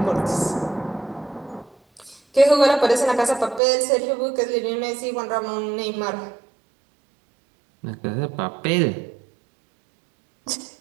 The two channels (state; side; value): drops out; left; at 3.6 s